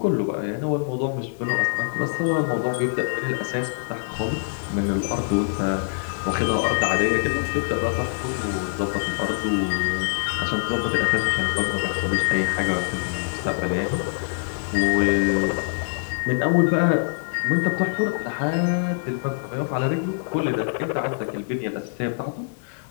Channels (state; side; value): silent; right; 62 dB below the other